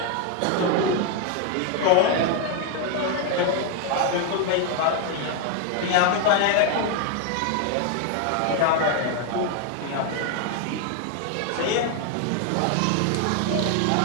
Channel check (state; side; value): different; both; correlation 0.01